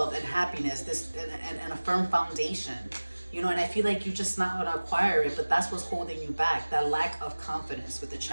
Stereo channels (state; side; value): inverted; both; correlation -1.00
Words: and happiness, and a firm foundation. You know, and I feel like you're just not going to acquire it, but that's what's holding you back, that lack of confidence with the